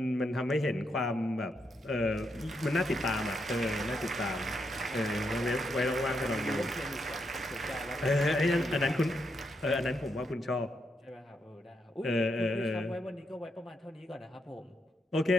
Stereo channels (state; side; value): normal; both; correlation 0.81